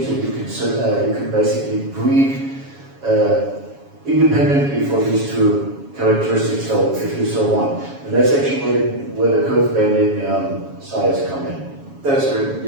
that you can basically breed independently for these two characteristics, so if you so want. And that's actually where the curve bending size come in. That's true.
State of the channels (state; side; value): late; left; 7.2 ms